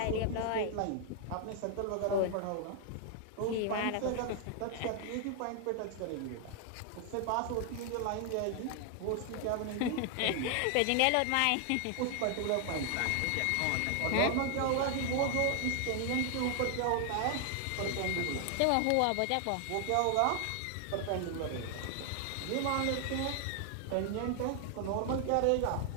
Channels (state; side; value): different; both; correlation 0.00